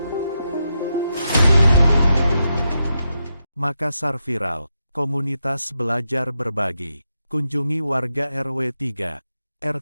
Makassar viral, komunitas belajar berbagi. Kunjungi warga RW 3,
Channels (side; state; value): both; inverted; correlation -0.85